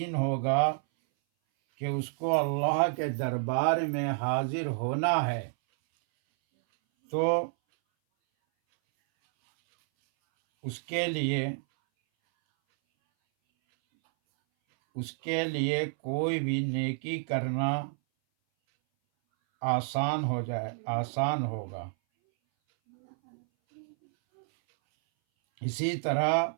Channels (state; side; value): silent; left; 58 dB below the other